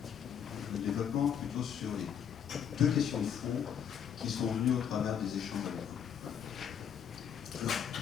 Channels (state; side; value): quieter; right; 8.2 dB